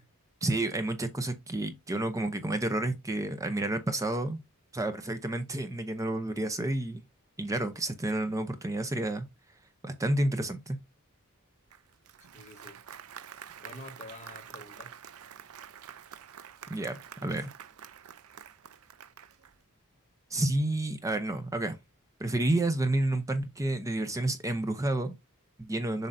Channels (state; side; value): normal; both; correlation 0.76